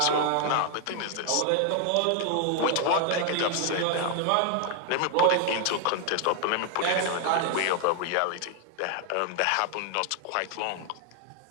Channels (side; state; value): both; different; correlation 0.00